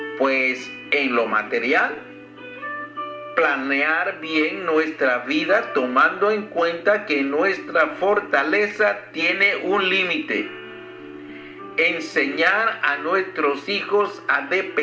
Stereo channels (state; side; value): identical; both; correlation 1.00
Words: Pues en lo material, planear bien nuestra vida tomando en cuenta que nuestra fortaleza tiene un límite. Enseñar a nuestros hijos a